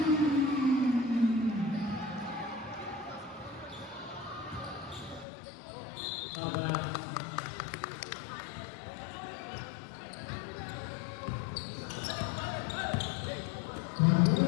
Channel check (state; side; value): drops out; right; at 5.2 s